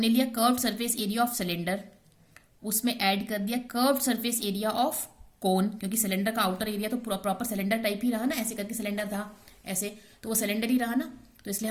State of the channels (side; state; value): both; identical; correlation 1.00